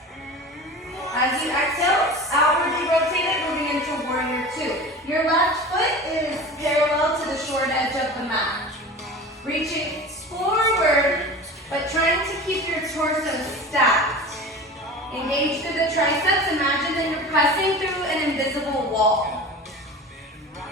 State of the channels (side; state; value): both; normal; correlation 0.35